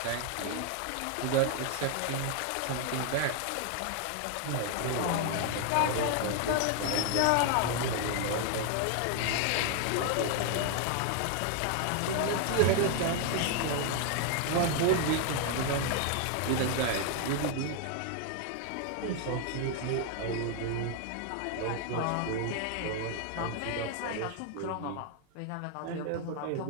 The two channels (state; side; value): different; both; correlation 0.00